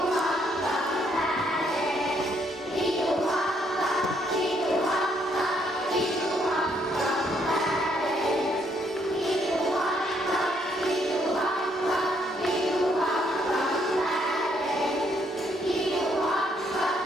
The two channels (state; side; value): normal; both; correlation 0.71